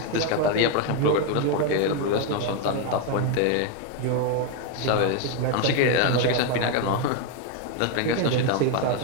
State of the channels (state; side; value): different; both; correlation 0.01